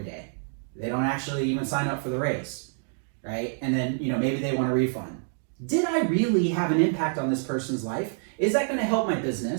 day. They don't actually even sign up for the race, right? And then, maybe they want a refund. Did I really have an impact on this person's life? Is that going to help my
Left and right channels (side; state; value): left; silent; 60 dB below the other